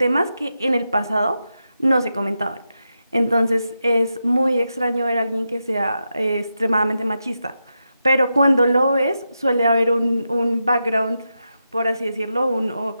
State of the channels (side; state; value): both; inverted; correlation -0.87